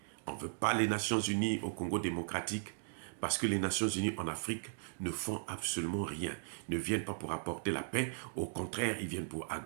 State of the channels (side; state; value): left; silent; digital silence